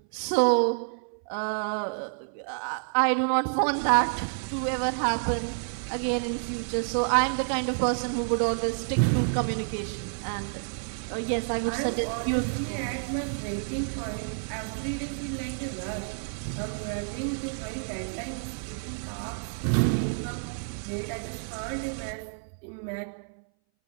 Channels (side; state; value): left; silent; 59 dB below the other